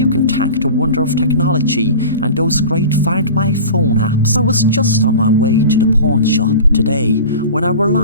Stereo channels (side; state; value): both; inverted; correlation -0.36